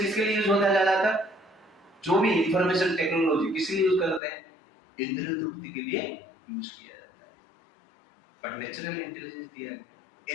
लिए यूज होता है ज्यादातर? जो भी इंफॉर्मेशन टेक्नोलॉजी किसके लिए यूज करते हैं? इंद्रिय तृप्ति के लिए यूज किया जाता है। पर नेचुरल इंटेलिजेंस दिया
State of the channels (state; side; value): drops out; right; at 4.2 s